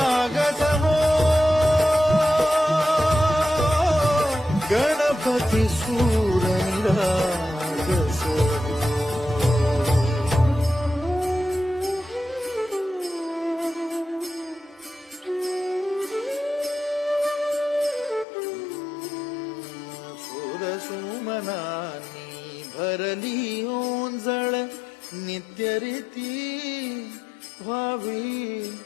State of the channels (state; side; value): drops out; right; at 18.2 s